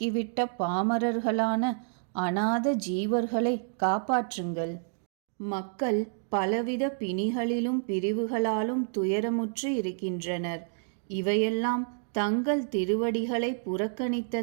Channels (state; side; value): silent; left; digital silence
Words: பாமரர்களான அநாத ஜீவர்களை காப்பாற்றுங்கள். மக்கள் பலவித பிணிகளிலும் பிரிவுகளாலும் துயரமுற்று இருக்கின்றனர். இவையெல்லாம் தங்கள் திருவடிகளை